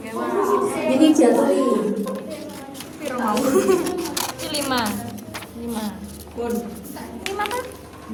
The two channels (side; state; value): both; identical; correlation 1.00